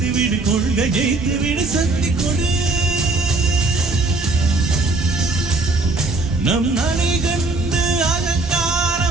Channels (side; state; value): left; quieter; 3.2 dB